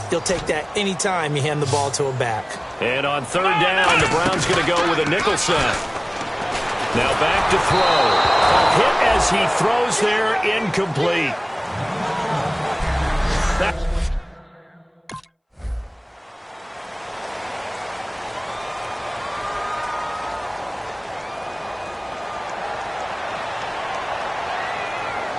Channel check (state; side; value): identical; both; correlation 1.00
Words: He'll take that anytime you hand the ball to a back. And on third down, the Browns going to go with a nickel set. Now back to throw. A hit as he throws there, incomplete.